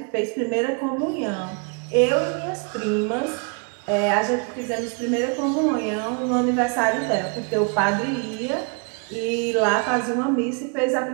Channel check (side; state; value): left; quieter; 36.9 dB